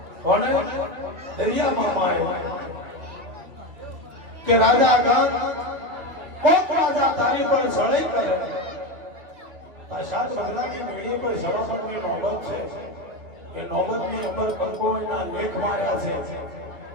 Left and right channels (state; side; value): late; left; 2.9 ms